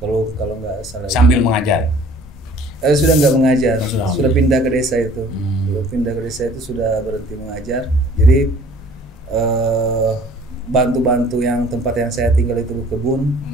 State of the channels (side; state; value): both; normal; correlation 0.52